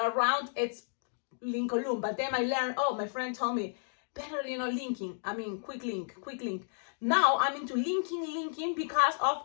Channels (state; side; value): silent; right; digital silence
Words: are round, it's Lincoln. But then I learned, my friend told me, better, linking. I mean, quick link. Now I'm into linking because